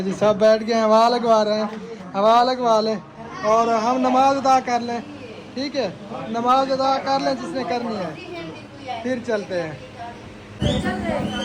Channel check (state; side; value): identical; both; correlation 1.00